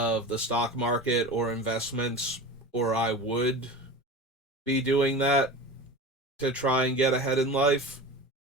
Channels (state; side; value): normal; both; correlation 0.31